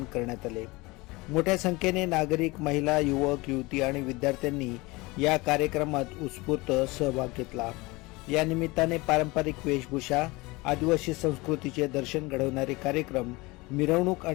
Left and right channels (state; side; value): quieter; right; 23.3 dB